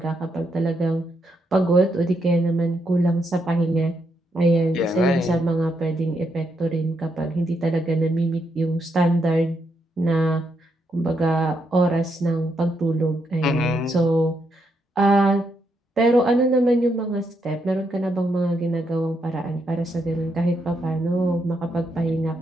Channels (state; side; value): normal; both; correlation 0.79